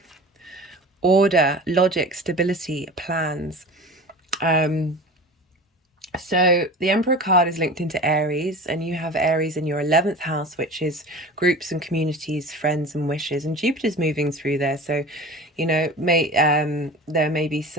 Order, logic, stability, plans. So the Emperor card is linked into Aries, and you have Aries in your 11th house, which is groups and communities, friends and wishes, and Jupiter's moving through there. So, there may be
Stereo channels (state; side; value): normal; both; correlation 0.36